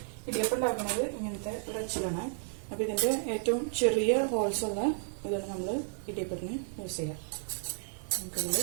ഇടിയപ്പം ഉണ്ടാക്കുന്നത് ഇങ്ങനത്തെ ഒരു അച്ചിലാണ്. അപ്പോൾ ഇതിൻ്റെ ഏറ്റവും ചെറിയ ഹോൾസ് ഉള്ള ഇതാണ് നമ്മൾ ഇടിയപ്പത്തിന് യൂസ് ചെയ്യുക. നമുക്കിതിൽ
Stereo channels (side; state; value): left; silent; digital silence